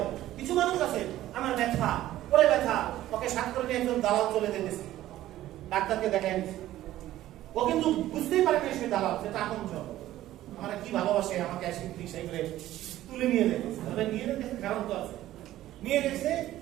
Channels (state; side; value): quieter; left; 14.3 dB